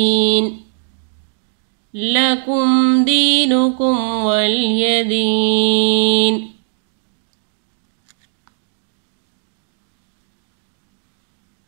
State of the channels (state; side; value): silent; left; digital silence